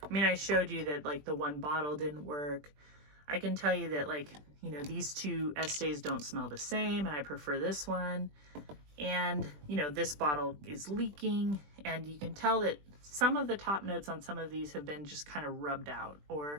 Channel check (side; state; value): left; late; 20 ms